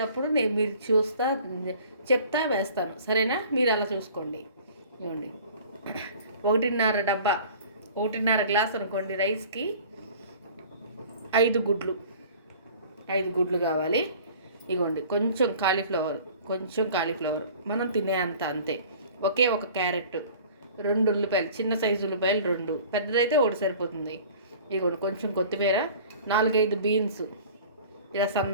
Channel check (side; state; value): both; inverted; correlation -0.46